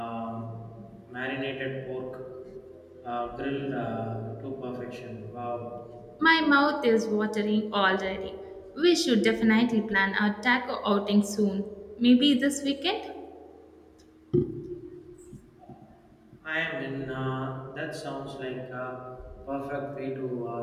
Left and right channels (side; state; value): both; identical; correlation 1.00